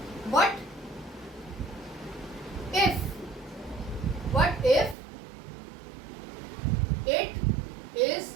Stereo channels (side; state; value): left; drops out; at 5.0 s